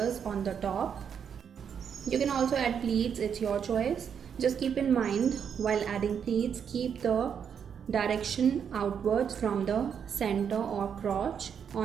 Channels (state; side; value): quieter; left; 7.6 dB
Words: on the top. You can also add pleats, it's your choice. Just keep in mind while adding pleats, keep the direction outwards from the center or crotch